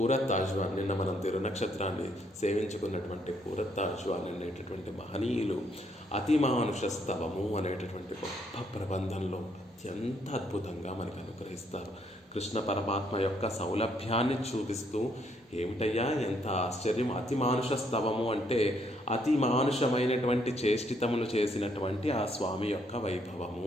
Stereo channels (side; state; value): both; normal; correlation 0.71